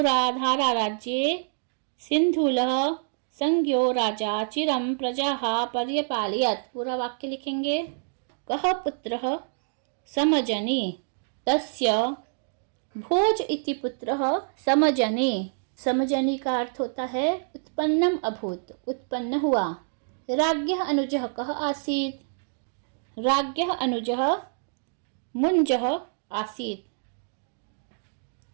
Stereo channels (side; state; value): left; silent; digital silence